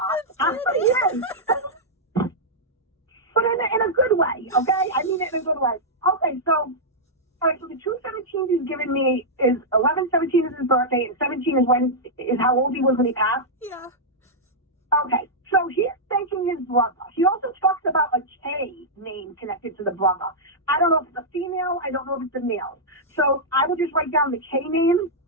But he is. But in a good way, okay? I mean it in a good way. Okay, so, all right, so the 217s he's given me is 11/17 is his birthday, and 17 is how old he was when he passed? Yeah. Okay, so he's thanking his brother. He also talks about a K name connected to the brother. I don't know if it's a female. I don't know if it's a male. So I would just write down the K name.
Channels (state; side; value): normal; both; correlation -0.08